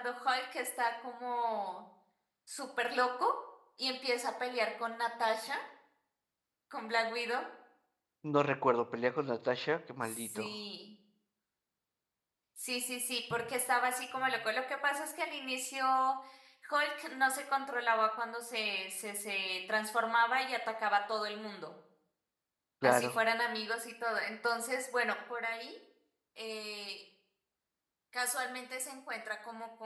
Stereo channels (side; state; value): both; identical; correlation 1.00